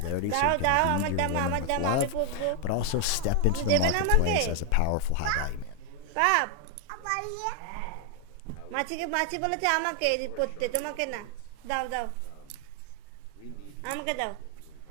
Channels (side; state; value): both; different; correlation 0.01